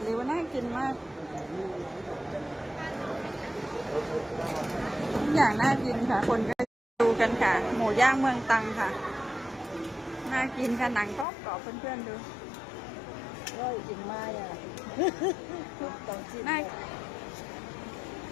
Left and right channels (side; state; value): right; drops out; at 11.2 s